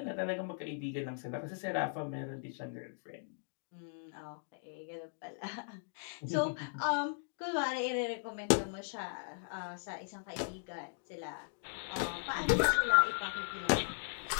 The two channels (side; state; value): right; silent; digital silence